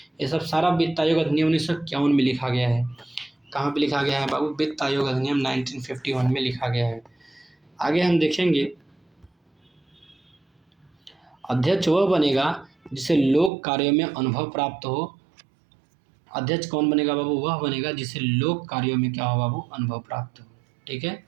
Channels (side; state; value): left; drops out; at 13.5 s